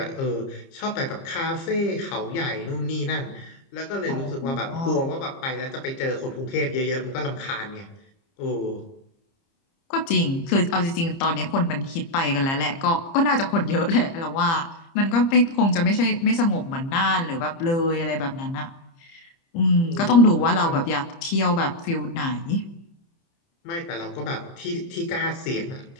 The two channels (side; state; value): right; late; 30 ms